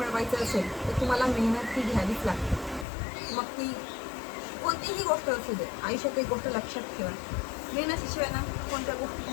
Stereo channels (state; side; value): drops out; right; at 2.9 s